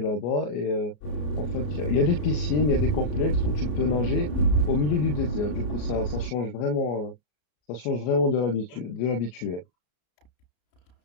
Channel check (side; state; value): right; late; 33 ms